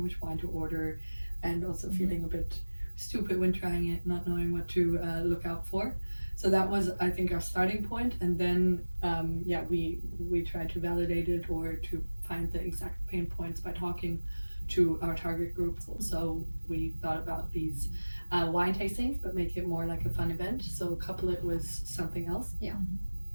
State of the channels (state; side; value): inverted; both; correlation -1.00